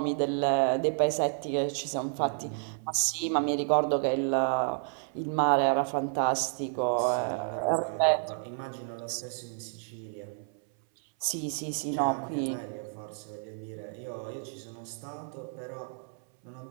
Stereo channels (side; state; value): left; silent; 58 dB below the other